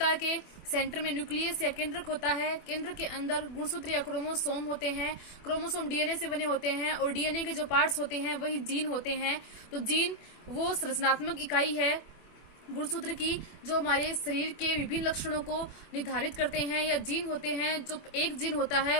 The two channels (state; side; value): late; right; 24 ms